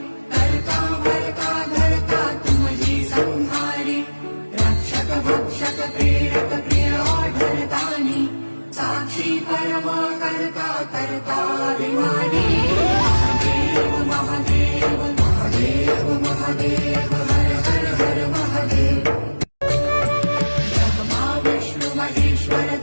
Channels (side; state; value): both; inverted; correlation -1.00